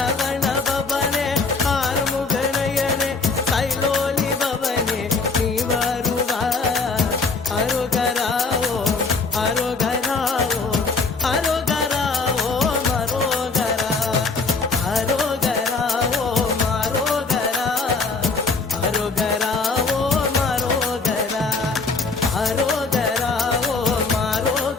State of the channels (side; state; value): right; quieter; 4.2 dB